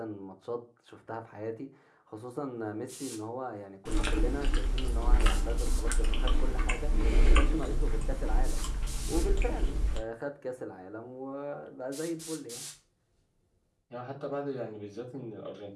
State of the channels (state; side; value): identical; both; correlation 1.00